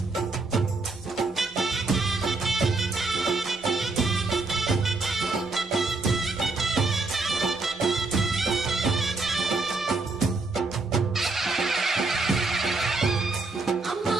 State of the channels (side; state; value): left; quieter; 3.5 dB